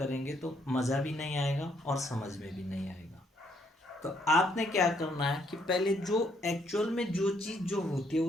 तो मज़ा भी नहीं आएगा और समझ में भी नहीं आएगा। तो आपने क्या करना है कि पहले जो एक्चुअल में जो चीज़ जो होती है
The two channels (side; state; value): both; normal; correlation 0.70